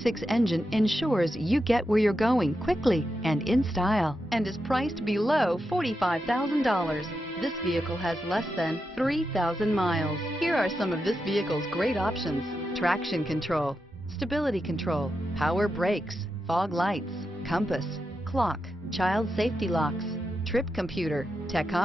engine ensures you get where you're going quickly and in style, and is priced below $45,000. This vehicle has less than 3,000 miles. Here are some of this vehicle's great options: traction control, stability control, power brakes, fog lights, compass, clock, child safety locks, trip computer,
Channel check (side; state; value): both; normal; correlation 0.87